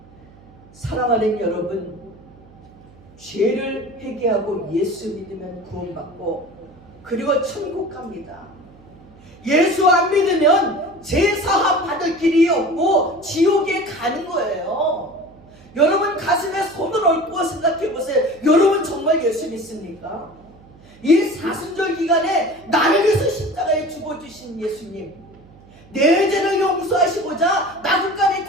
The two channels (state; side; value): noise; right; hum, 25 dB below the sound